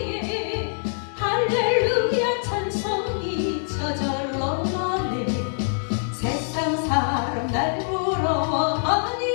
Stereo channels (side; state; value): right; silent; digital silence